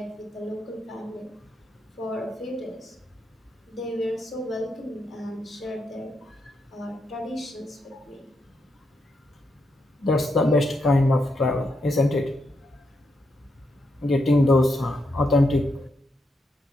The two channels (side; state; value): both; normal; correlation 0.82